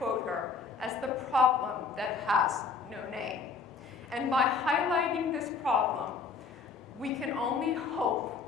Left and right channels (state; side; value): quieter; right; 5.0 dB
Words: her, as the problem that has no name. And by highlighting this problem, we can only hope